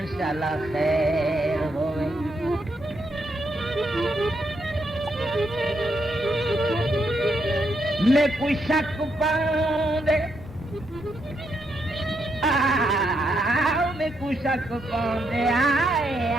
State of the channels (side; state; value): both; normal; correlation 0.79